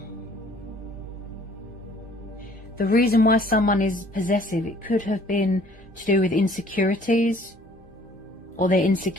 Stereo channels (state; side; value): normal; both; correlation 0.56